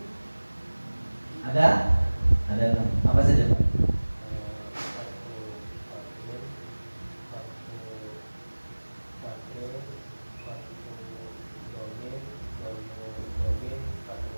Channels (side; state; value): both; inverted; correlation -1.00